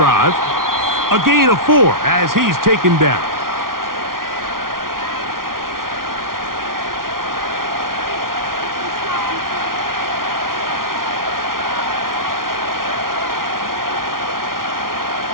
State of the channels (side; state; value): left; late; 0.92 ms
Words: A gain of 4 as he's taken down.